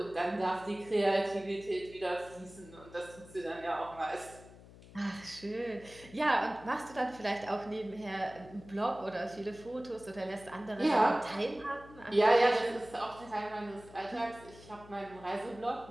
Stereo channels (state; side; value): noise; left; hum, 20 dB below the sound